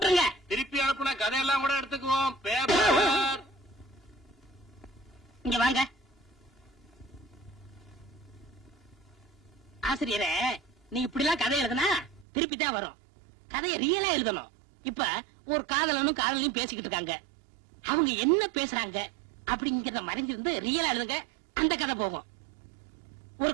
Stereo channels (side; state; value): left; drops out; at 12.2 s